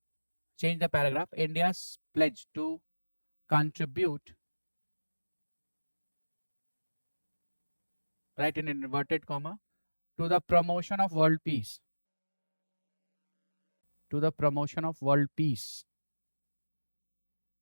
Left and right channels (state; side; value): inverted; both; correlation -1.00